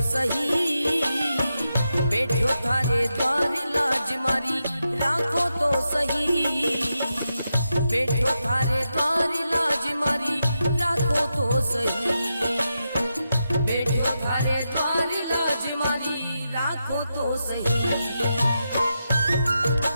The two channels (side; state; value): both; inverted; correlation -0.87